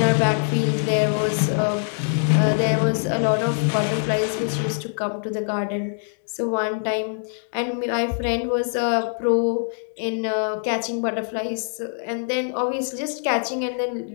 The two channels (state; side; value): silent; right; digital silence